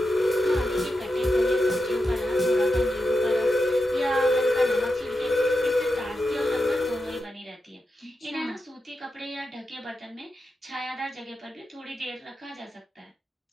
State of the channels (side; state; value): both; normal; correlation 0.88